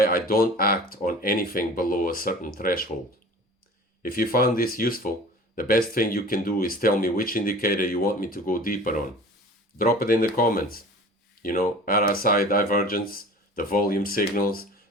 I don't act on anything below a certain threshold. If you found this useful, the best thing you can do is tell me which indicator you want me to go deeper on. Drop it in the comments. RSI divergence, the volume signals,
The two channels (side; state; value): both; normal; correlation 0.41